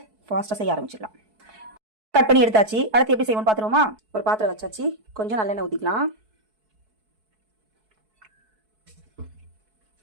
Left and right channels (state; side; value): late; left; 4.6 ms